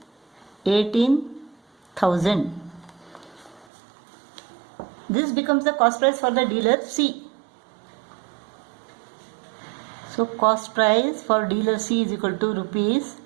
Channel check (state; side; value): drops out; left; at 3.7 s